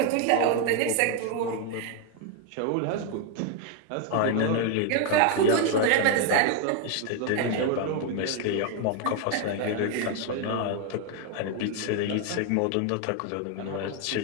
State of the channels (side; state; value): both; different; correlation 0.01